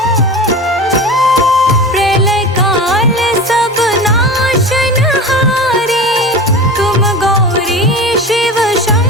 प्रलय काल सब नाशनहारी, तुम गौरी शिव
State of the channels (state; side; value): normal; both; correlation 0.31